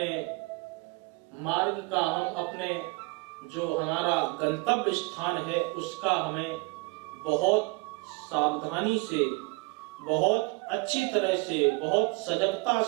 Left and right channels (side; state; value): left; quieter; 28.0 dB